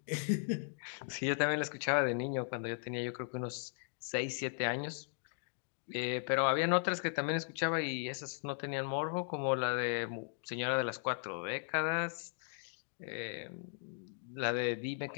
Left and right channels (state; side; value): silent; right; digital silence